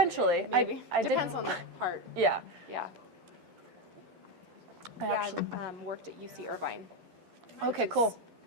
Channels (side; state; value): left; late; 12 ms